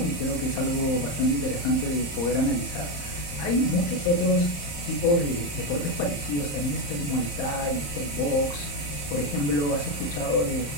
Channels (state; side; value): late; right; 34 ms